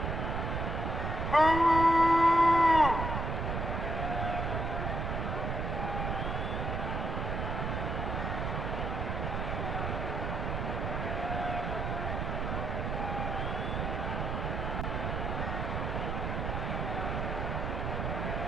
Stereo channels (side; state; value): right; noise; rumble, 2 dB below the sound